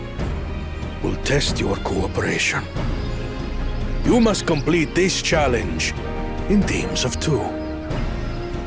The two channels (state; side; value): identical; both; correlation 1.00